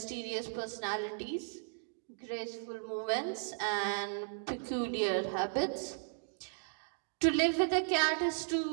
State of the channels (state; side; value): silent; left; digital silence